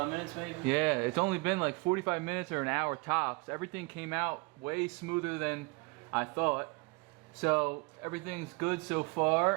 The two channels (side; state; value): left; quieter; 27.6 dB